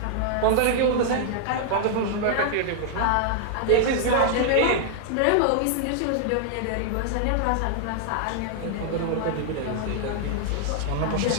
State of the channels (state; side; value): different; both; correlation 0.00